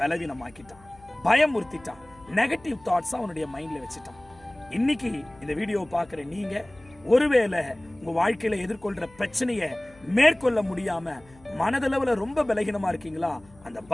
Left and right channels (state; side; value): noise; left; hum, 26 dB below the sound